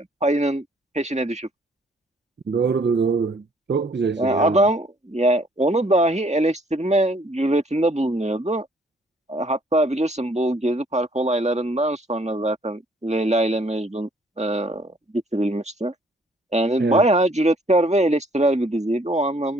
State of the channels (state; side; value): normal; both; correlation 0.63